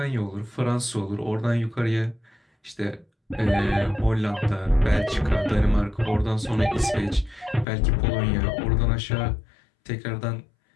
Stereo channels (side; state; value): right; drops out; at 7.7 s